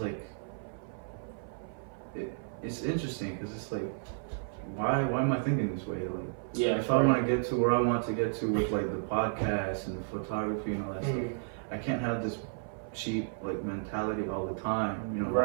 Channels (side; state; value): left; silent; 56 dB below the other